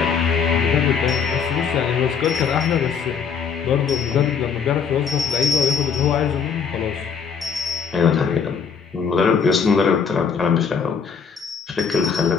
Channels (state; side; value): quieter; right; 6.4 dB